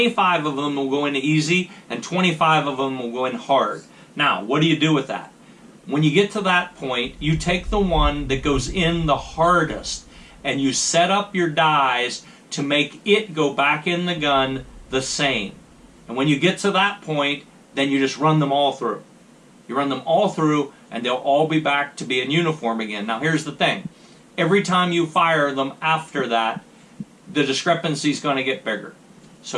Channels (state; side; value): identical; both; correlation 1.00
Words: of them will go in easy, and 25 of them will go in hard. Now, what do you do with that? When you get to that point, you take the one that goes in the hardest, and you set up your dies to make it go back in the gun the same. And when you get to that point, then you just run them all through. You run them all through, and they'll all be back to being uniform again. Now here's the thing. Every time you fire them after that, the discrepancy is going to get bigger.